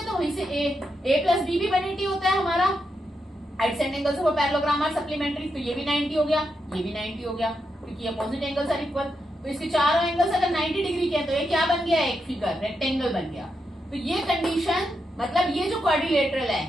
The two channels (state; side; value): normal; both; correlation 0.84